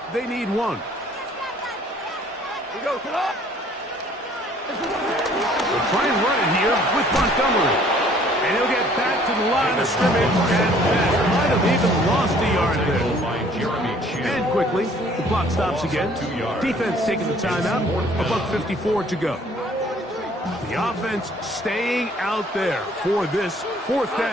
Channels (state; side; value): normal; both; correlation 0.57